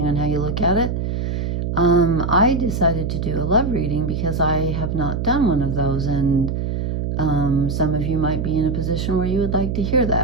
on how you look at it. I decided to do a love reading because I have not done one of those, and some of you might be in a position where you would like to hear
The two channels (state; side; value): noise; right; hum, 1 dB below the sound